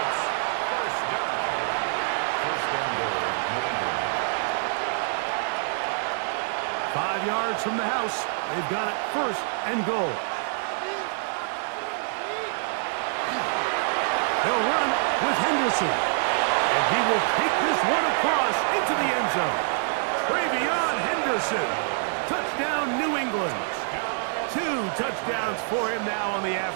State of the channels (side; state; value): left; silent; 61 dB below the other